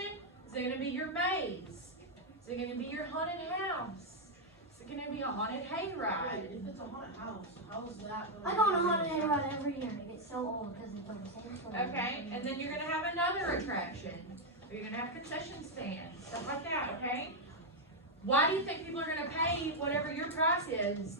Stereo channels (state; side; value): normal; both; correlation -0.01